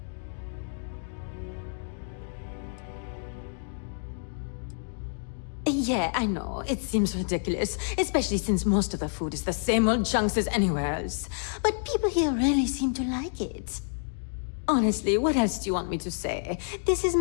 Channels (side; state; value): right; silent; digital silence